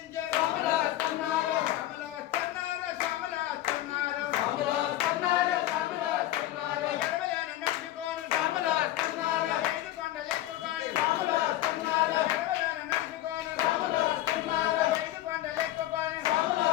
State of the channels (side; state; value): right; quieter; 14.5 dB